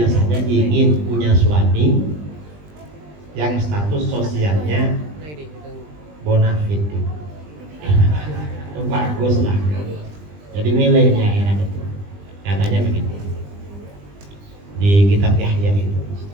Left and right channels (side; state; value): left; late; 20 ms